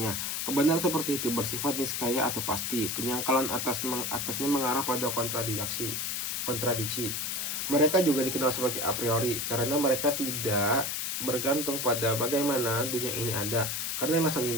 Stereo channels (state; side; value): noise; left; hiss, 1 dB below the sound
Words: Kebenaran seperti itu bersifat niskaya atau pasti. Penyangkalan atasnya mengarah pada kontradiksi. Mereka juga dikenal sebagai a priori karena mereka tidak bergantung pada bagaimana dunia ini ada. Karena alasan